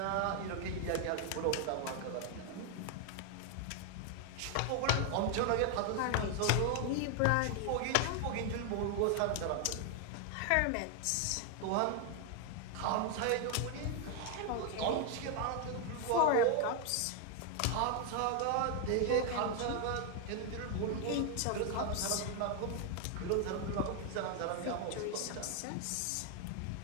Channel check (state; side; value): different; both; correlation 0.00